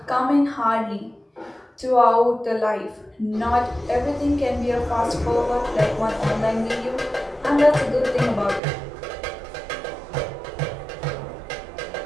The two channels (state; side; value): drops out; left; at 8.6 s